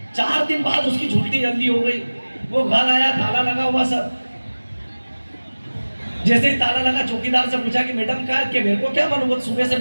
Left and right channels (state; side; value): inverted; both; correlation -1.00